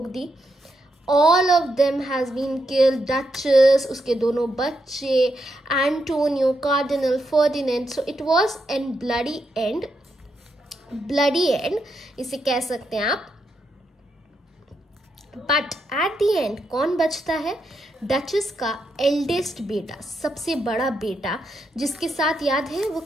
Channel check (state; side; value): normal; both; correlation 0.82